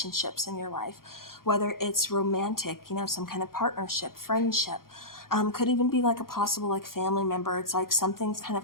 in your life, whether it's romantic, some kind of partnership, friendship. Could even be like a possible like family member. It's like something's kind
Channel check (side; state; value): right; late; 0.92 ms